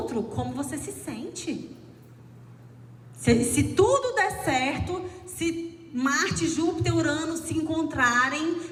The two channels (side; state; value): both; identical; correlation 1.00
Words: como você se sente. Se tudo der certo, se Marte, Júpiter, Urano se encontrarem